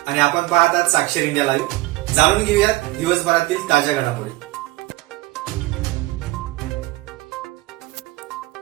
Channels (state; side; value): quieter; left; 20.0 dB